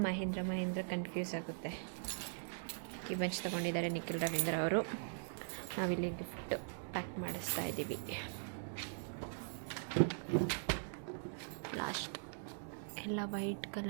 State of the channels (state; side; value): silent; left; digital silence